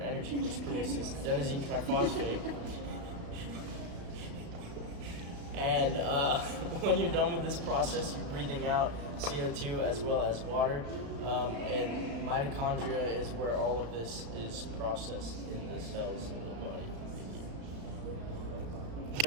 which produces adenosine triphosphate. And when you're done with this process, you're breathing out CO2 as well as water, and mitochondria is where all of this is processed in the cells of the body.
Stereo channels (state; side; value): late; left; 35 ms